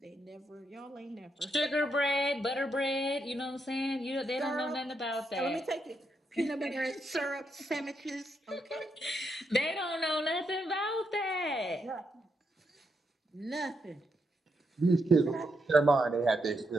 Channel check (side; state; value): both; normal; correlation 0.80